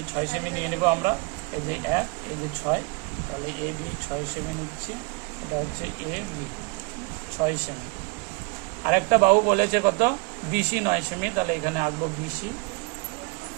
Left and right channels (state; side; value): quieter; left; 28.8 dB